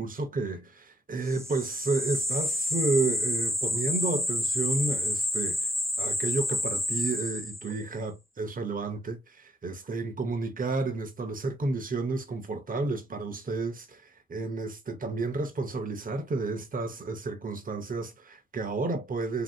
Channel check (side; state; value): both; normal; correlation 0.69